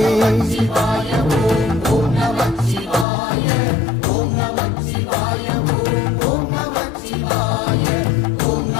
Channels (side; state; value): right; drops out; at 3.1 s